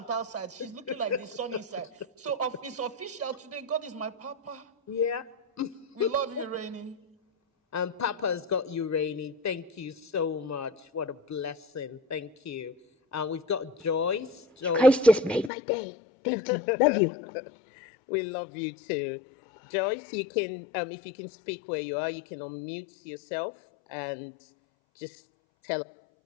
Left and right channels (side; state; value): right; drops out; at 15.5 s